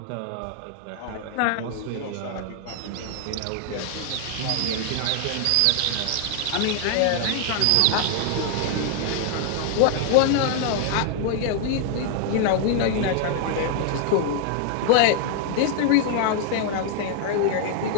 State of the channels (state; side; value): different; both; correlation 0.00